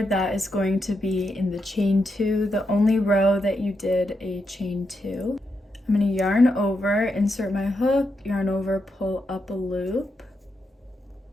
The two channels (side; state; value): both; normal; correlation 0.84